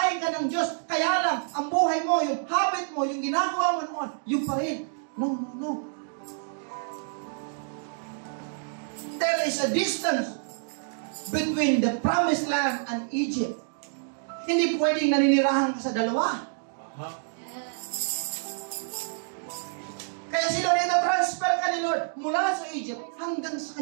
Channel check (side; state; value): left; silent; digital silence